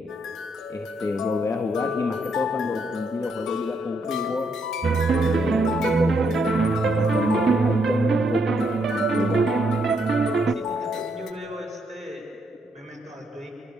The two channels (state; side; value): normal; both; correlation 0.75